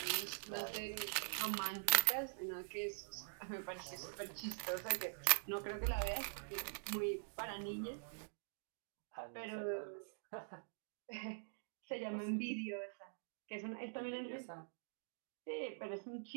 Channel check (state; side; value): silent; left; digital silence